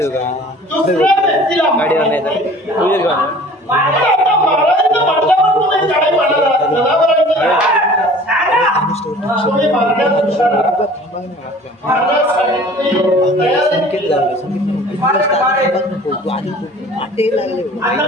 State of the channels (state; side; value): normal; both; correlation 0.47